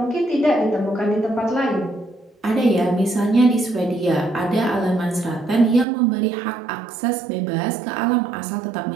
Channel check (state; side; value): drops out; left; at 5.9 s